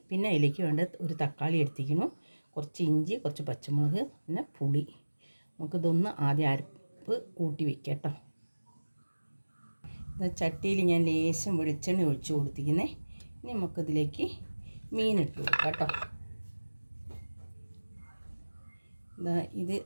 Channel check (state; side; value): inverted; both; correlation -1.00